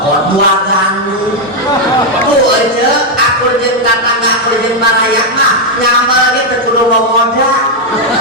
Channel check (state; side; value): normal; both; correlation 0.01